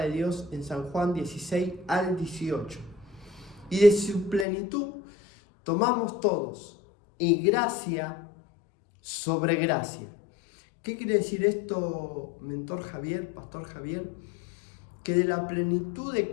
de Dios en San Juan 16 al 18. Y de su plenitud tomamos todos, y gracia sobre gracia. ¿Qué quiere decir esto, mentor Javier, pastor Javier? Que de la plenitud de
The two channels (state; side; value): drops out; right; at 4.5 s